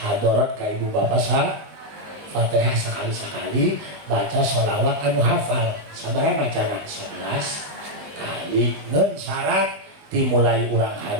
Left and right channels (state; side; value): late; left; 20 ms